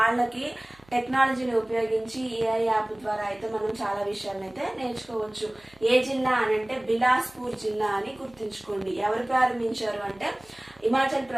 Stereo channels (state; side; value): noise; right; hum, 29 dB below the sound